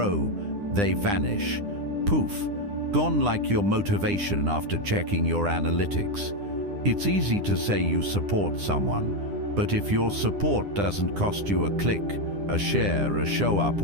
they vanish. Poof, gone like your motivation after checking your analytics. It's easy to say you support someone, but if your support doesn't cost you a click, a share, a show up,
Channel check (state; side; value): late; left; 9.9 ms